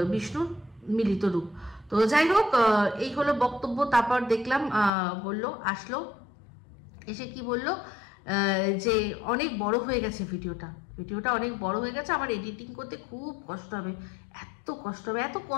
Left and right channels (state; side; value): drops out; right; at 4.9 s